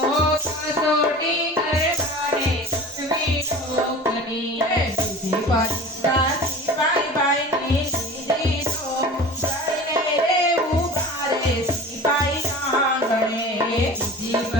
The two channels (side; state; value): both; normal; correlation 0.37